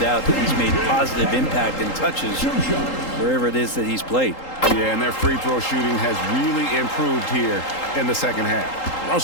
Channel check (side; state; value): right; late; 3.8 ms